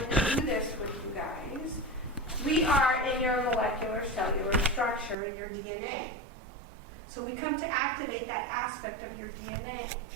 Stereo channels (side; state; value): left; drops out; at 5.2 s